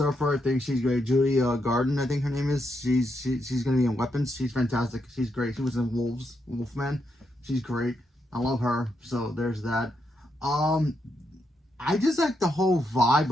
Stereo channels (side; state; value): both; normal; correlation 0.81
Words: I think she's great. Judy Garden, I think her name is. She's gonna be in Weapons. She's fantastic. She's great. She was in Wolfman. She's great. I love her. So there's that. I just like the whole vibe